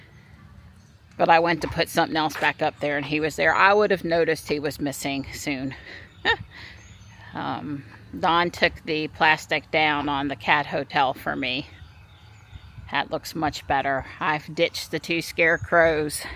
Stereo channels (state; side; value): identical; both; correlation 1.00